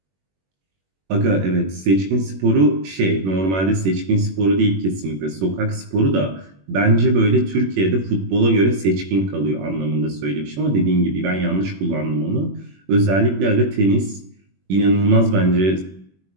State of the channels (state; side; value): late; left; 21 ms